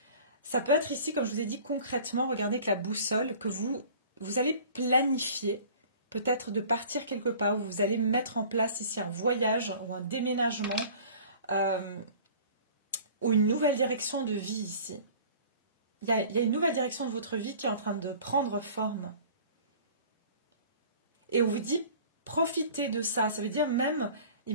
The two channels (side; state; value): both; inverted; correlation -0.46